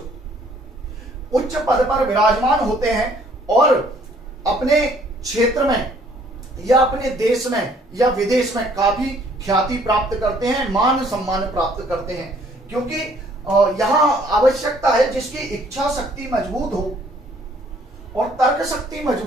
उच्च पद पर विराजमान होते हैं और अपने क्षेत्र में या अपने देश में या विदेश में काफी ख्याति प्राप्त करते हैं, मान सम्मान प्राप्त करते हैं। क्योंकि यहां आवश्यकता है जिसकी इच्छा शक्ति मजबूत हो और तर्क शक्ति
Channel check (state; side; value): normal; both; correlation 0.61